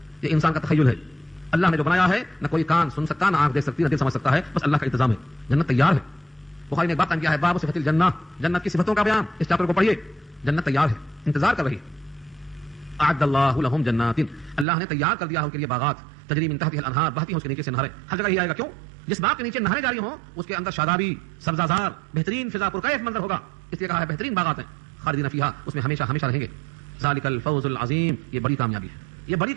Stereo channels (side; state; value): left; drops out; at 14.7 s